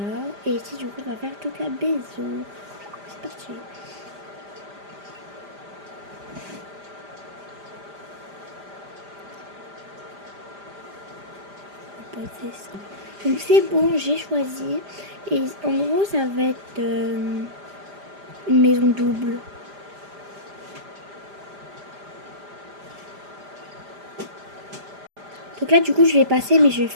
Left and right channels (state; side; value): late; left; 5.0 ms